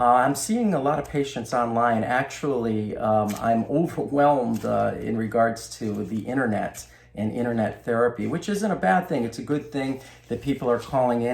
seeing a lot of patients online. Actually, I'm overwhelmed in regards to the internet and internet therapy, which isn't a bad thing. It's a good thing that people are calling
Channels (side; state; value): both; identical; correlation 1.00